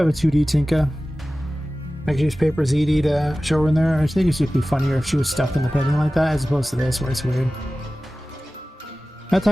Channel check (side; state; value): both; normal; correlation 0.96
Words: a 2D Tinka. I could use Paper ZD to show her in there. I think it should be funnier if she was stuck in the painting like that as opposed to this where it's weird. That